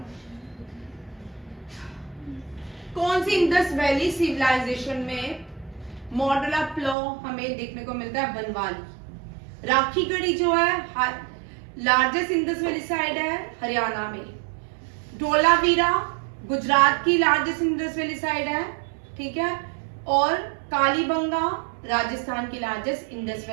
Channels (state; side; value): drops out; left; at 7.0 s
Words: कौन सी इंडस वैली सिविलाइजेशन में मॉडल ऑफ लॉ हमें देखने को मिलता है, बनवाली। राखीगढ़ी जो है लार्जेस्ट इंडस वैली साइड है हरियाणा में। धोलावीरा गुजरात की लार्जेस्ट इंडस वैली साइड है, ठीक है, और कालीबंगा राजस्थान की लार्जेस्ट इंडस